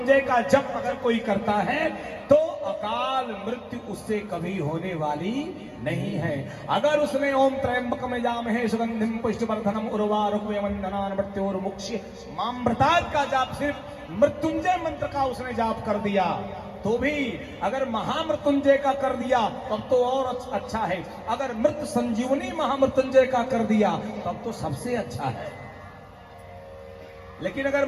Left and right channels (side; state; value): both; identical; correlation 1.00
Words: का जप अगर कोई करता है तो अकाल मृत्यु उससे कभी होने वाली नहीं है। अगर उसने ओम त्रयंबकम यजामहे सुगंधिम पुष्टिवर्धनम उर्वारुकवंदनान् मृत्योर्मुक्ष्य मामृतात् का जाप, सिर्फ मृत्युंजय मंत्र का उसने जाप कर दिया तो भी, अगर महामृत्युंजय का कर दिया तब तो और अच्छा है, अगर मृत संजीवनी महामृत्युंजय का कर दिया तब तो सबसे अच्छा है। लेकिन अगर